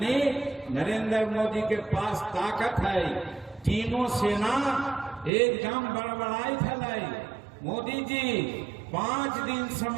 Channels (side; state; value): left; drops out; at 5.3 s